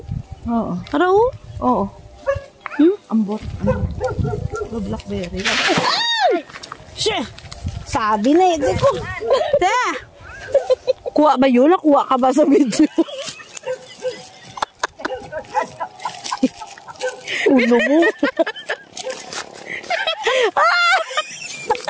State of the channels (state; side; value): identical; both; correlation 1.00